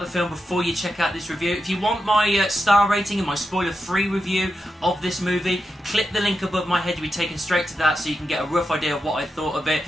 film before you check out this review. If you want my star rating and my spoiler-free review of this movie, click the link above my head, you'll be taken straight to that so you can get a rough idea of what I thought of it.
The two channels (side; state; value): both; normal; correlation 0.87